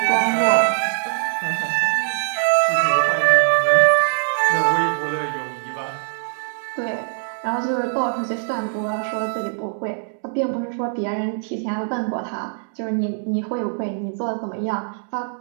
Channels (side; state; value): left; silent; digital silence